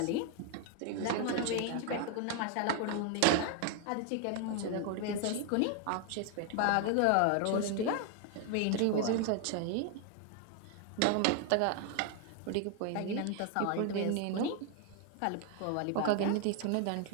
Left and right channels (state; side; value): different; both; correlation 0.00